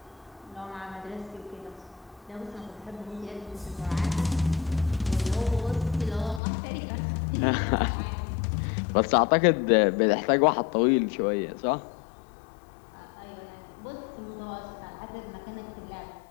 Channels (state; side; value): drops out; right; at 6.4 s